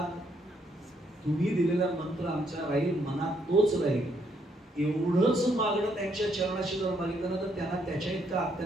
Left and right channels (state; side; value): normal; both; correlation 0.73